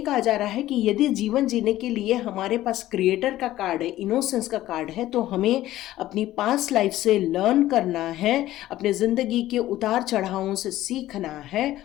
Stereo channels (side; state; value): right; quieter; 14.7 dB